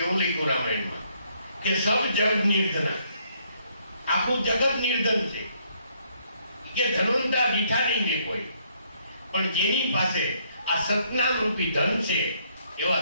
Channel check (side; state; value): both; inverted; correlation -0.69